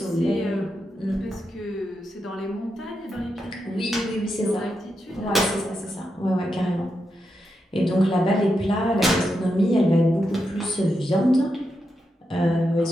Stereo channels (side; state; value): both; normal; correlation 0.85